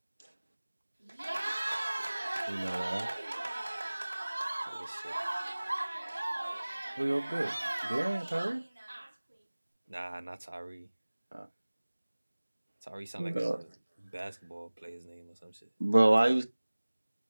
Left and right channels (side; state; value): both; inverted; correlation -1.00